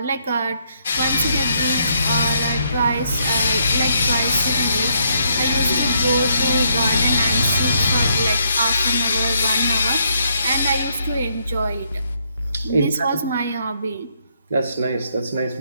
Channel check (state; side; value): inverted; both; correlation -0.73